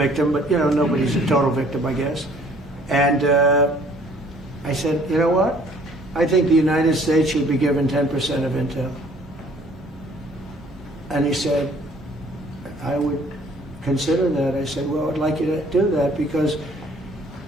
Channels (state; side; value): normal; both; correlation 0.57